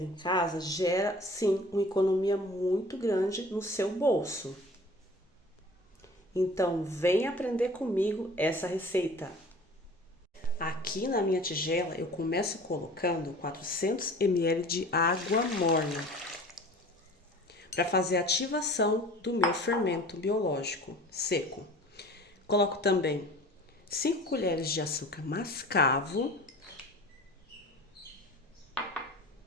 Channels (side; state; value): both; normal; correlation 0.43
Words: em casa, gera sim uma economia muito grande no seu bolso. Então, vem aprender comigo essa receita. Aqui na minha tigela eu começo colocando 400 ml de água morna para fazer a ativação do meu fermento biológico seco. Coloco também 5 colheres de açúcar mascavo,